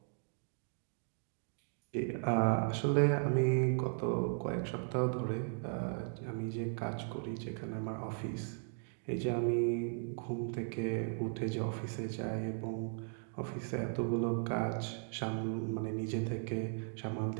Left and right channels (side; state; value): left; silent; 53 dB below the other